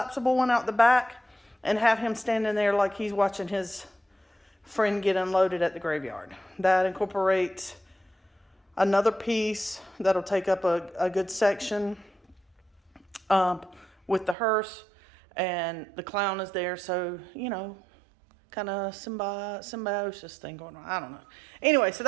one out the back and have him standing there like he's watching his friend get unloaded at the graveyard. That incorporates another piece that'll take up a good section with the hearse, and the clown is there, so kind of symbiosis thing going on. I don't know. Anyway, so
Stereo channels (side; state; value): left; drops out; at 14.4 s